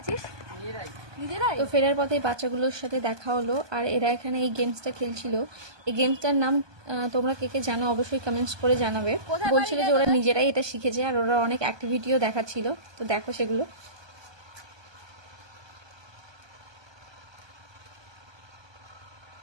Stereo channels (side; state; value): left; late; 1.2 ms